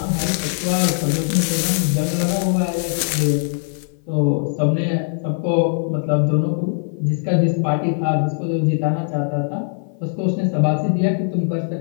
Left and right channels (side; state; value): right; silent; 57 dB below the other